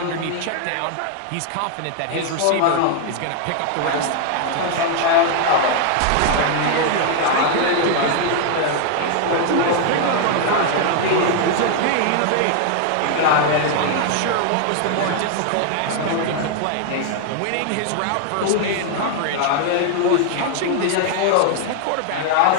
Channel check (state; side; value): different; both; correlation 0.00